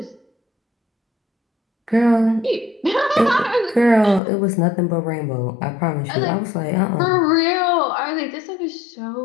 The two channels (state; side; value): drops out; right; at 4.2 s